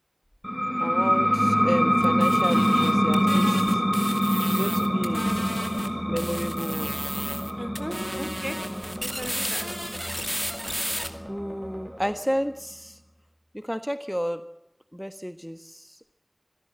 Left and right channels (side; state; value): both; identical; correlation 1.00